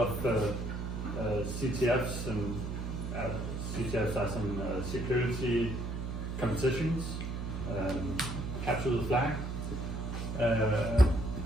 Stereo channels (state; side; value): noise; right; hum, 4 dB below the sound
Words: CTFs, and CTFs are some security competitions, capture the flag.